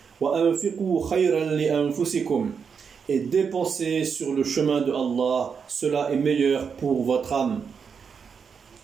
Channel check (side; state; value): left; quieter; 6.3 dB